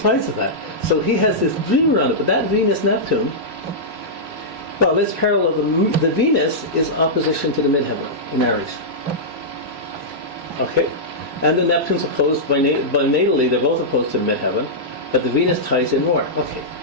of that. So he has this dream around it. But that Venus-Neptune, well, let's parallel the Venus is opposition to the midheaven in Aries. Okay? And the Neptune's opposed by natally, they're both opposed to the midheaven, but the Venus ties in more. Okay.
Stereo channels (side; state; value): left; late; 3.0 ms